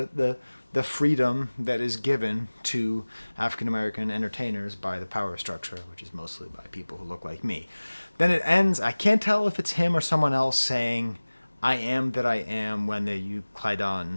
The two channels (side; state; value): both; inverted; correlation -1.00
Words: freedom that is given to African American entertainers by the power structure, which is mostly by people who look like me. Then it ends. I can't tell if it's him or someone else saying, "I am that I am" when the Euclydon